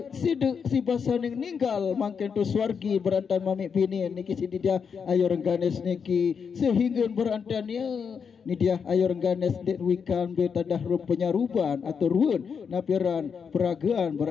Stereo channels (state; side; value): quieter; right; 6.4 dB